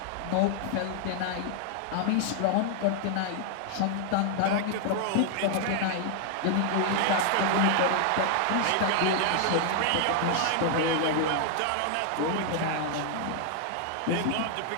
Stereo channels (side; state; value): both; different; correlation 0.00